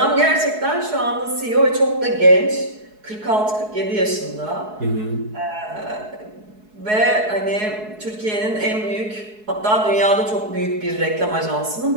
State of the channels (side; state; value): left; late; 4.7 ms